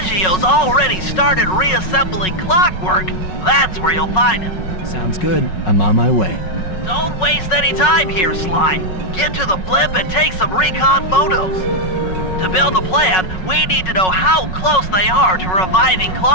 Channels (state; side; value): late; right; 5.4 ms